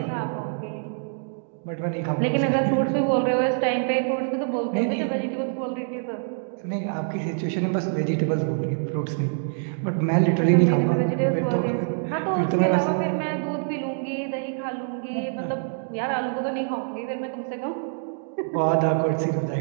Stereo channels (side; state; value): left; silent; digital silence